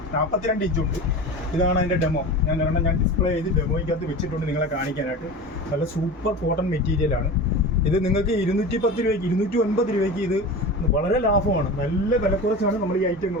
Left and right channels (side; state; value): both; normal; correlation 0.31